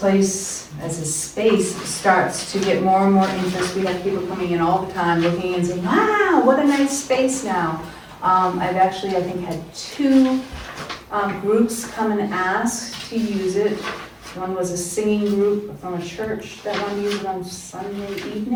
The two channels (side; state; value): both; identical; correlation 1.00